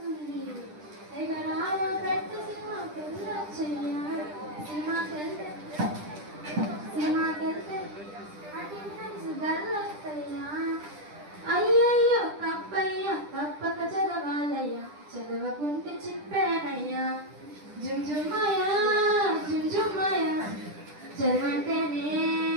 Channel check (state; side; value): late; left; 10 ms